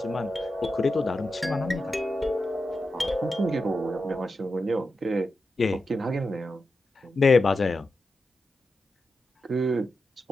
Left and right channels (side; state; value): both; normal; correlation 0.89